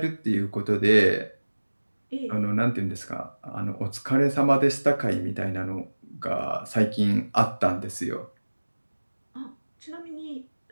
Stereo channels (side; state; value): both; inverted; correlation -1.00